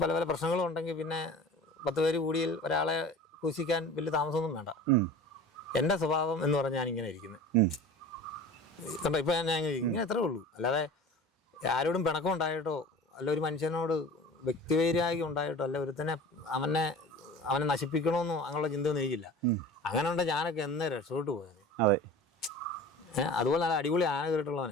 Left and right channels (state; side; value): normal; both; correlation 0.39